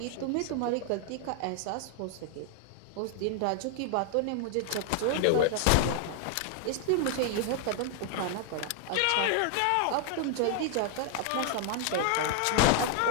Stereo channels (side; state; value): both; different; correlation 0.00